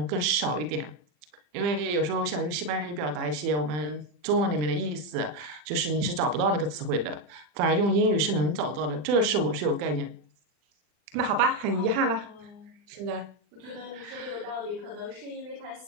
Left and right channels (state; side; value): late; left; 40 ms